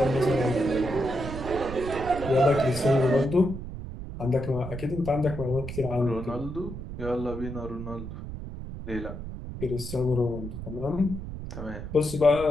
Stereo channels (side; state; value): right; noise; rumble, 9 dB below the sound